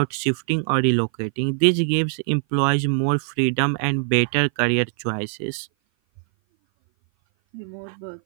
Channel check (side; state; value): left; silent; 57 dB below the other